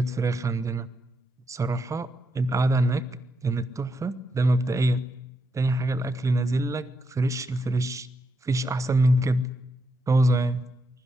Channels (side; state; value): both; normal; correlation 0.82